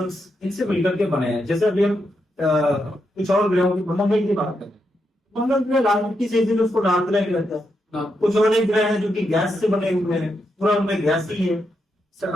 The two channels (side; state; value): both; normal; correlation 0.83